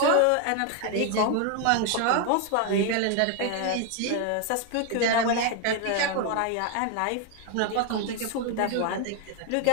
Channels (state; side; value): different; both; correlation 0.01